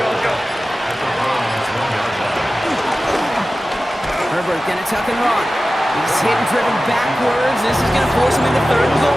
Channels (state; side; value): normal; both; correlation 0.95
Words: at the Browns 1-yard line. Herbert gonna tuck and run. He's hit and driven backwards. This is gonna force him into 3rd and